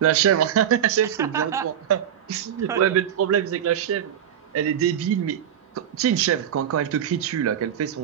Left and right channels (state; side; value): quieter; left; 9.7 dB